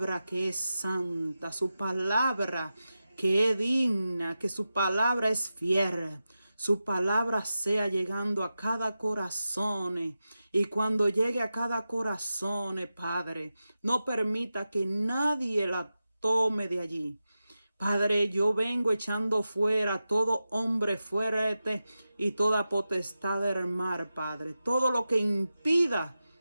que es santa, su palabra que es digna, que su palabra es fiel. Su palabra sea llegando a cada corazón. Y cuando llegue a cada corazón, Padre, no permita que nadie la tome de allí. Padre, yo vengo echando fuera todo hombre fuerte y toda potestad del mar, Padre. Todo lo que impida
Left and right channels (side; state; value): both; inverted; correlation -0.92